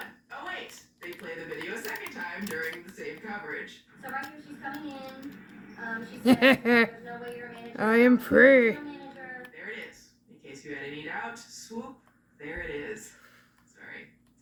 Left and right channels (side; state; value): both; identical; correlation 1.00